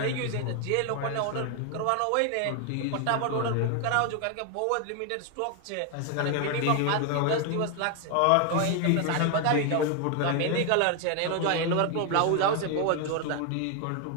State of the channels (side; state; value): both; different; correlation 0.01